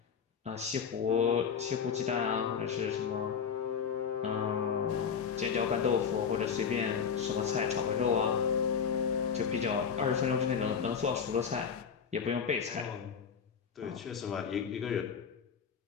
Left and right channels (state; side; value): quieter; right; 6.8 dB